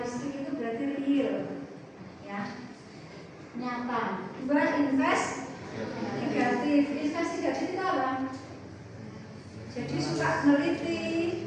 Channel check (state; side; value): identical; both; correlation 1.00